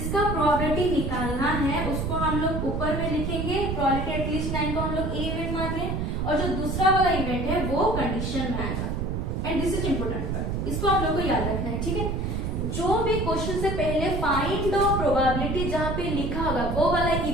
प्रोबेबिलिटी निकालना है उसको हम लोग ऊपर में लिखेंगे, प्रोबेबिलिटी एटलीस्ट 9 को हम लोग ए इवेंट मान रहे हैं, और जो दूसरा वाला इवेंट है वो कंडीशन में आएगा। And this is important part, इसको आप लोग को याद रखना है, ठीक है। जो भी क्वेश्चन से पहले फाइंड द प्रोबेबिलिटी जहां पे लिखा होगा वो वाला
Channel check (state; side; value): noise; right; rumble, 1 dB below the sound